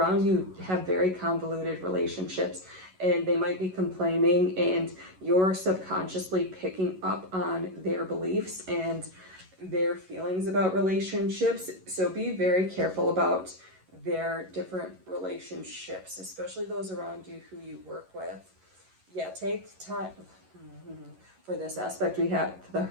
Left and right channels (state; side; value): late; left; 11 ms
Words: you have very convoluted relationships, and they might be complaining, and you're subconsciously picking up on their beliefs and their feelings about relationships. So be very careful about their different relationships, especially those around you who you work with. Yeah, take time for this aspect. We have the